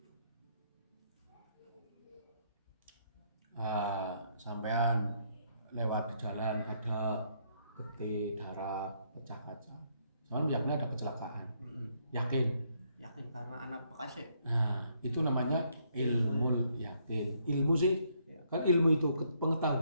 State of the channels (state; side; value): inverted; both; correlation -0.72